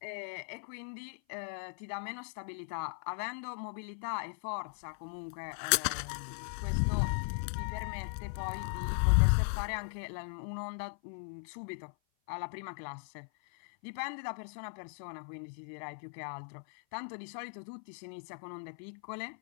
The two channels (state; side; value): silent; right; 52 dB below the other